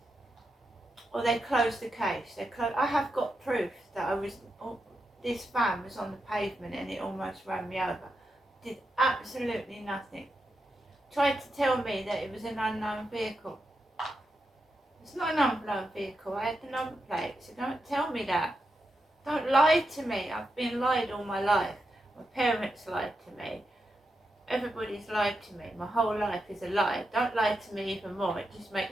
Or they close the case. I have got proof that this van was on the pavement and it almost ran me over. Did absolutely nothing. Tried to tell me that it was an unknown vehicle. It's not an unknown vehicle. I had the number plate, so don't tell me that. Don't lie to me. I've been lied all my life. My parents lied to me. Everybody's lied to me. My whole life is a lie. Don't lie to me even more. It just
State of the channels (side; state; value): both; normal; correlation 0.86